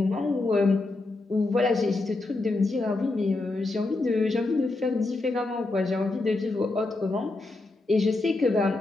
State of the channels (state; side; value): quieter; right; 3.1 dB